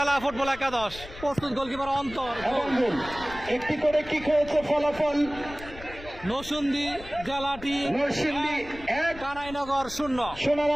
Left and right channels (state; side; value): noise; left; rumble, 15 dB below the sound